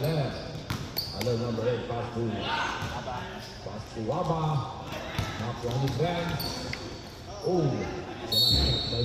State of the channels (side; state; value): both; identical; correlation 1.00